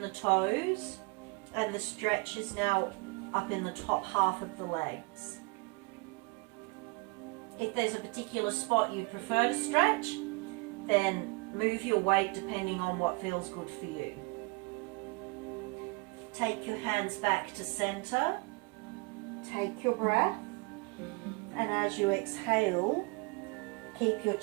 the toes, and the stretch is now up in the top half of the legs. If there's a particular spot you prefer to stretch, then move your weight depending on what feels good for you. Take your hands back to center. Take your breath. And as you exhale, keep your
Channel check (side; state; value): left; quieter; 28.3 dB